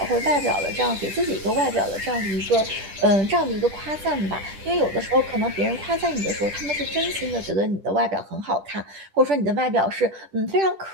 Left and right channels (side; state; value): left; late; 10 ms